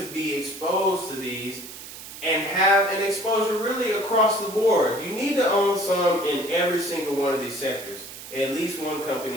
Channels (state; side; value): noise; right; hiss, 13 dB below the sound